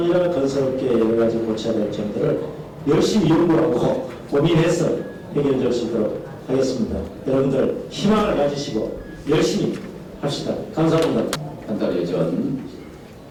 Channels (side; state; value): both; identical; correlation 1.00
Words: 건설업계에 여러 가지 고쳐야 될 점들을 열심히 연구하고 고민해서 해결될 수 있도록 하겠습니다. 여러분들 희망을 가지시고 열심히 합시다. 감사합니다. 한 달여 전